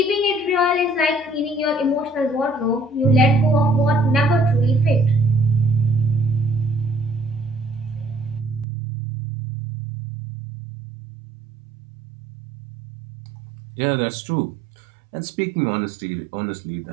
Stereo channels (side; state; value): left; drops out; at 8.7 s